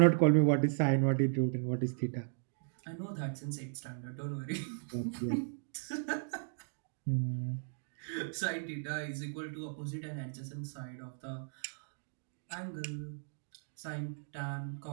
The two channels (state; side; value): silent; left; digital silence